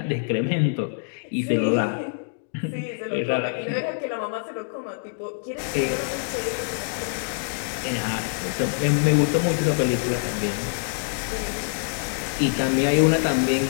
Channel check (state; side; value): silent; right; 62 dB below the other